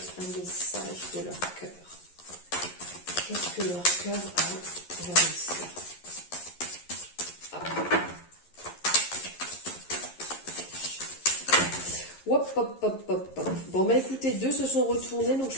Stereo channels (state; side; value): late; right; 11 ms